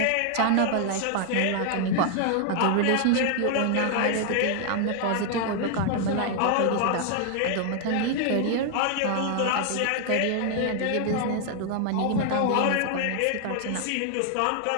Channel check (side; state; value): both; different; correlation 0.00